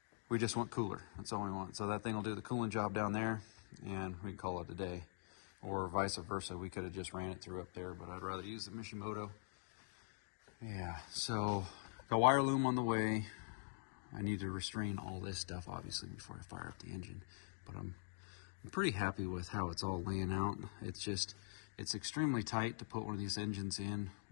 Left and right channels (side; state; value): right; silent; digital silence